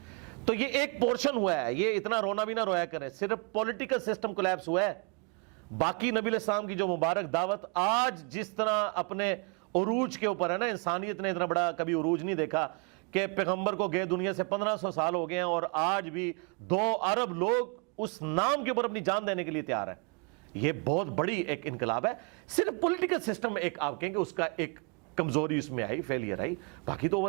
تو یہ ایک پورشن ہوا ہے, یہ اتنا رونا بھی نہ رویا کرے, صرف پولیٹیکل سسٹم کولیپس ہوا ہے. باقی نبی الاسلام کی جو مبارک دعوت آج جس طرح اپنے عروج کے اوپر ہے نا, انسانیت نے اتنا بڑا کبھی عروج نہیں دیکھا کہ پیغمبر کو گئے دنیا سے 1500 سال ہو گئے ہیں اور آج بھی 2 ارب لوگ اس نام کے اوپر اپنی جان دینے کے لیے تیار ہیں. یہ بہت بڑی ایک انقلاب ہے. صرف پولیٹیکل سسٹم ایک آپ کہیں کہ اس کا ایک کمزوری اس میں آئی, فیلئر آئی, باقی تو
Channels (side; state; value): left; quieter; 35.6 dB